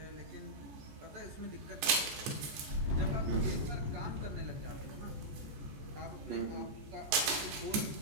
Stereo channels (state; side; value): late; left; 14 ms